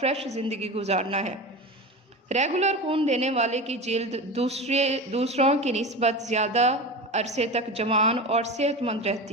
فریش زندگی گزارنا ہے۔ ریگولر خون دینے والے کی جلد دوسروں کی نسبت زیادہ عرصے تک جوان اور صحت مند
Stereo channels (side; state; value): both; normal; correlation 0.27